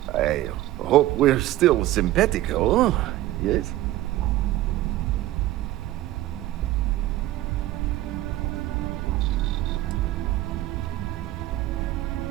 I hope we're still simpatico, yes?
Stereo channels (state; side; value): quieter; left; 15.5 dB